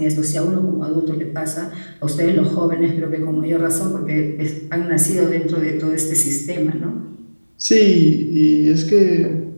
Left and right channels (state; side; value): inverted; both; correlation -1.00